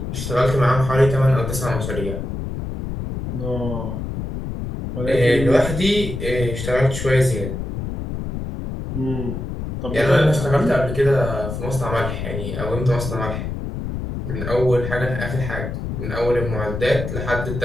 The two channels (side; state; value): left; noise; rumble, 5 dB below the sound